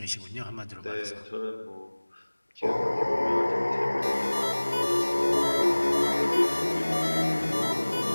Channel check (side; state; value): both; inverted; correlation -1.00